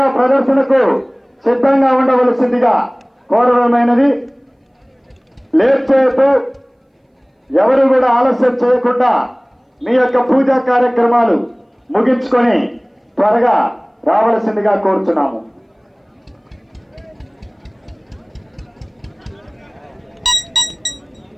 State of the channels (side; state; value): both; identical; correlation 1.00